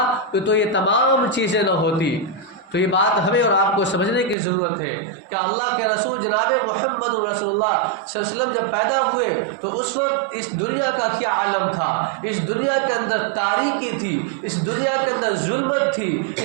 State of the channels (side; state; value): left; drops out; at 4.4 s